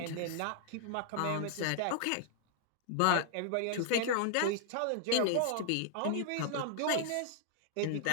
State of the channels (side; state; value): both; different; correlation -0.01